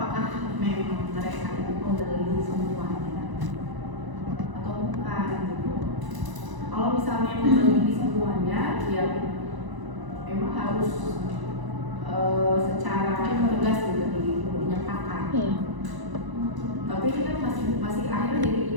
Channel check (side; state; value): left; late; 1.0 ms